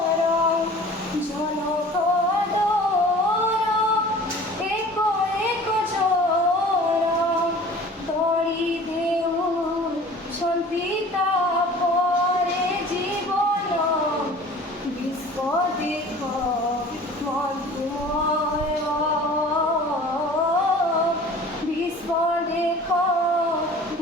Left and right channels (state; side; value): normal; both; correlation 0.45